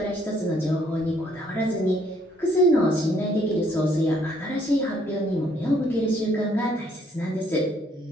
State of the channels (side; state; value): both; normal; correlation 0.66